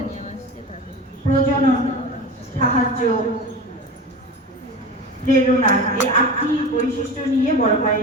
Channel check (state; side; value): normal; both; correlation 0.30